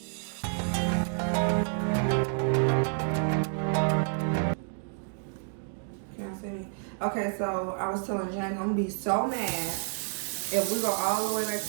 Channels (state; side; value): silent; left; 58 dB below the other